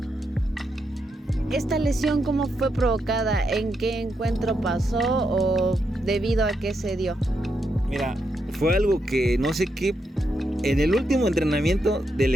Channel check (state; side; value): normal; both; correlation 0.82